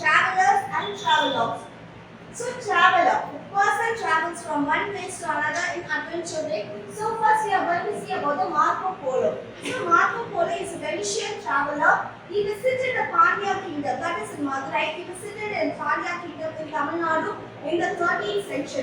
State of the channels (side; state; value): both; identical; correlation 1.00